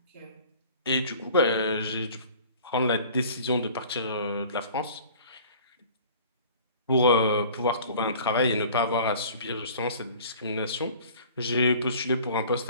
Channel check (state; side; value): inverted; both; correlation -0.47